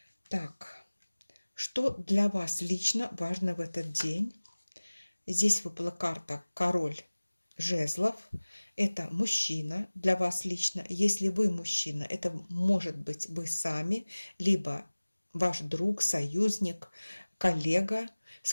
Так, что для вас лично важно в этот день? Здесь выпала карта король жезлов. Это мужчина для вас лично. Если вы мужчина, это может быть вы сами, либо ваш друг, союзник, коллега, с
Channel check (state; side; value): inverted; both; correlation -1.00